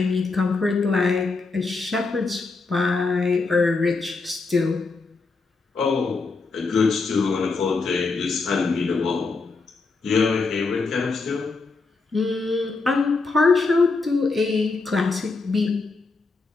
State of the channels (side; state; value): right; quieter; 4.0 dB